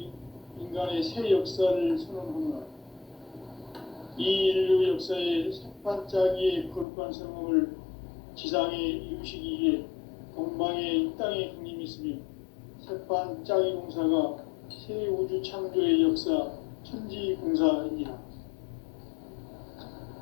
인간의 새 역사를 선언하노라. 이 인류 역사의 삭반짜기의 거룩한 성험을 지상에 이루시기 위해 동방의 이 땅에 강림했으며 삭반짜기 공사가 새 우주 창조의 역사 천지공사입니다.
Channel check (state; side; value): drops out; right; at 6.9 s